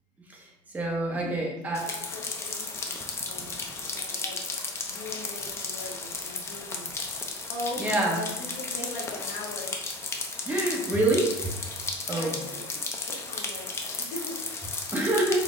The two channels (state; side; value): normal; both; correlation 0.36